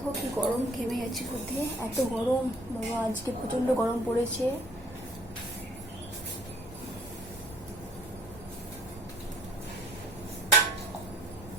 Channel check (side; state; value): both; normal; correlation 0.57